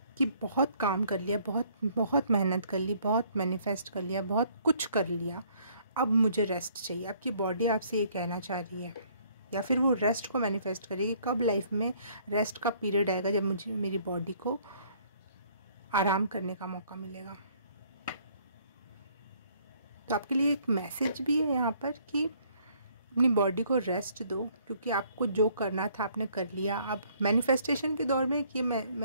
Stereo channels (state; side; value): inverted; both; correlation -0.62